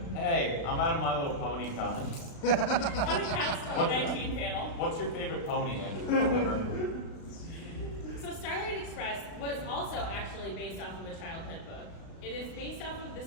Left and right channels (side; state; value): right; late; 36 ms